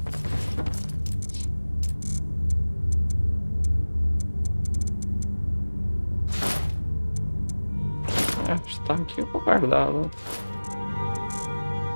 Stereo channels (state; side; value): inverted; both; correlation -1.00